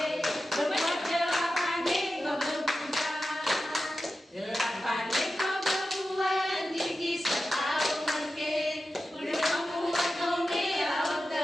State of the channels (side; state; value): both; normal; correlation 0.92